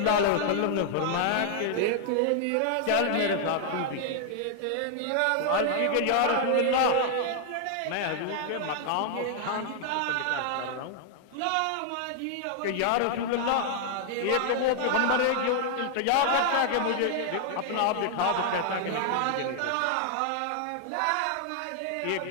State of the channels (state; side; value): different; both; correlation 0.00